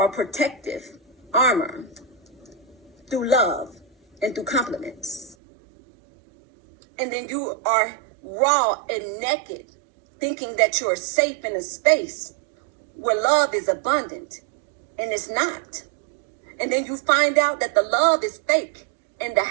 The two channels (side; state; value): left; drops out; at 5.4 s